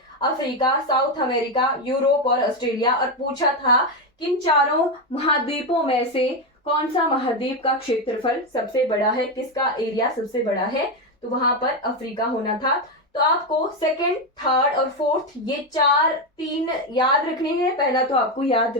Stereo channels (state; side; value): normal; both; correlation 0.09